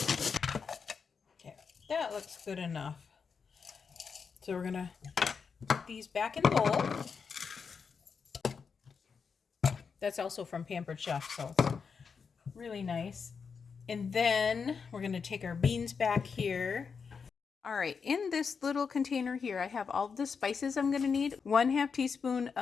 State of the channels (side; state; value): right; quieter; 5.8 dB